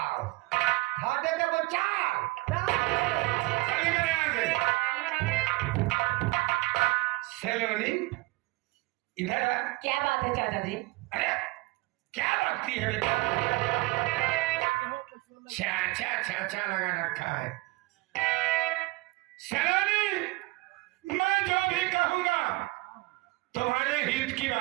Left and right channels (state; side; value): quieter; left; 22.0 dB